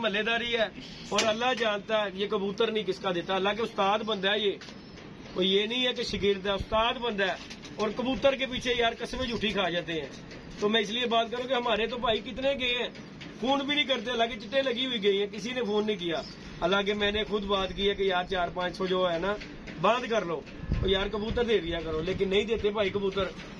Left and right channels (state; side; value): identical; both; correlation 1.00